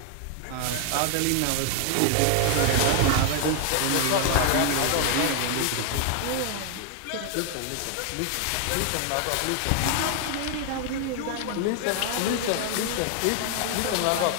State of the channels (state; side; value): different; both; correlation 0.00